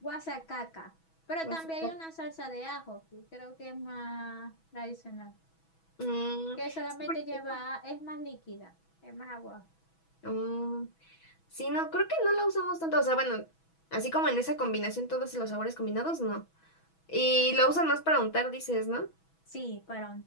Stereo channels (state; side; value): late; right; 6.1 ms